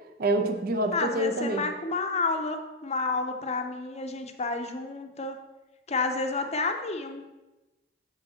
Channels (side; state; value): both; normal; correlation -0.04